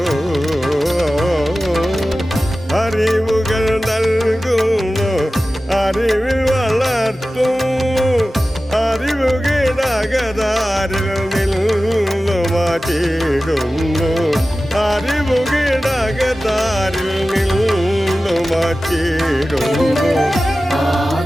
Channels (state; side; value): normal; both; correlation 0.95